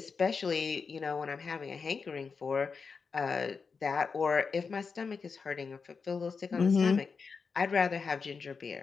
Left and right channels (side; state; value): right; quieter; 5.2 dB